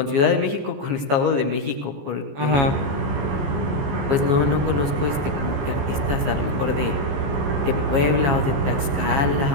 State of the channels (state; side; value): late; left; 15 ms